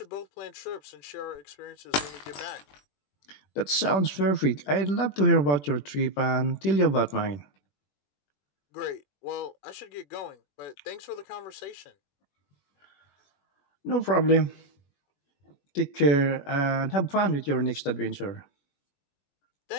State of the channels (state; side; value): late; right; 21 ms